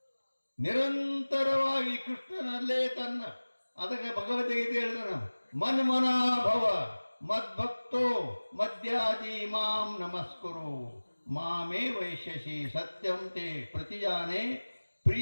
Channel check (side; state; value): both; inverted; correlation -1.00